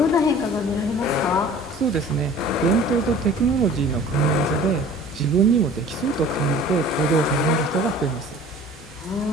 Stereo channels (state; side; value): normal; both; correlation 0.46